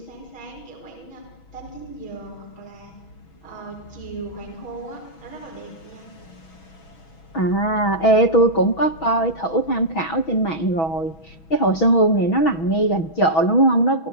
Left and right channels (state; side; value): late; right; 6.2 ms